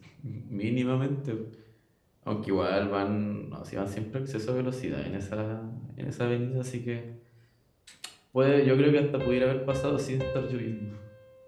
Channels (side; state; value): both; identical; correlation 1.00